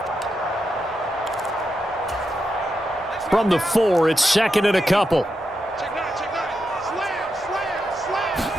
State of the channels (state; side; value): normal; both; correlation 0.86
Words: From the 4, it's 2nd and a couple.